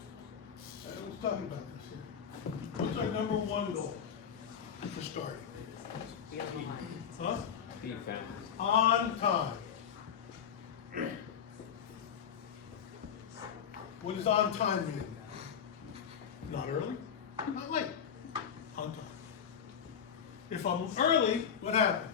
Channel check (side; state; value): right; quieter; 7.8 dB